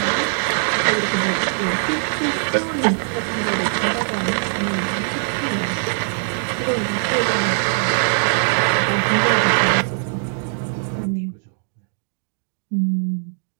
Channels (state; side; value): silent; left; digital silence